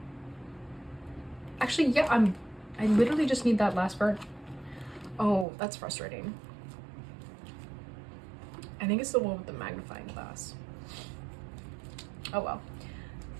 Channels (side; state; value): left; drops out; at 5.5 s